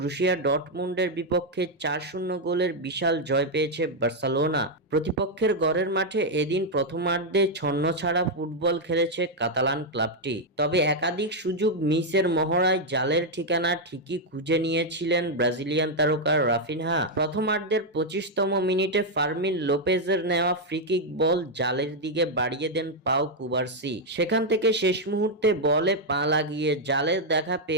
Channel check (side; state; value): both; normal; correlation 0.00